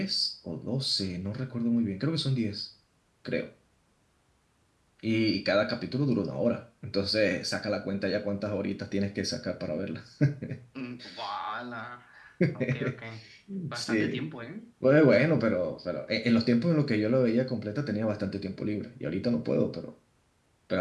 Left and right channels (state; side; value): identical; both; correlation 1.00